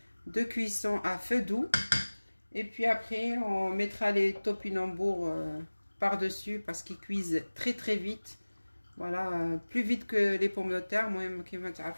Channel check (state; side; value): inverted; both; correlation -1.00